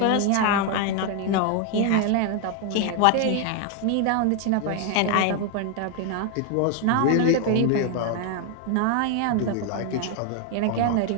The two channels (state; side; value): different; both; correlation 0.00